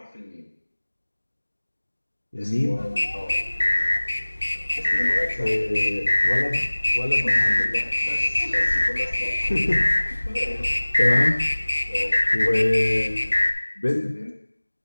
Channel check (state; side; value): inverted; both; correlation -1.00